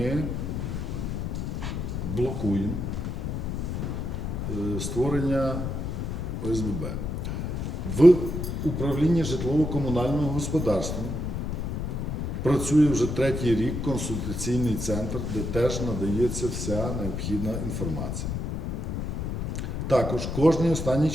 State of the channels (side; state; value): left; noise; rumble, 3 dB below the sound